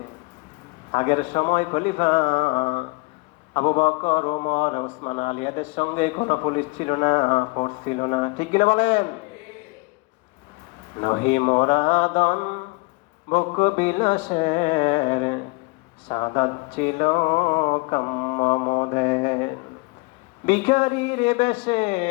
আগের সময় খলিফা আবু বকর, ওমর, ওসমান আলী এদের সঙ্গে কোনো পুলিশ ছিল না, ফোর্স ছিল না, ঠিক কিনা বলেন? নহি মোরাদন বক বিলাসের সাদাত ছিল কাম্য মোদের। ভিখারির বেশে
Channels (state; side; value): quieter; right; 28.4 dB